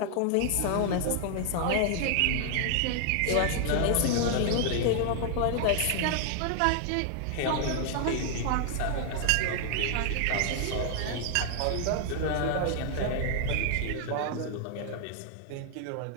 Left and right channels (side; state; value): both; different; correlation 0.00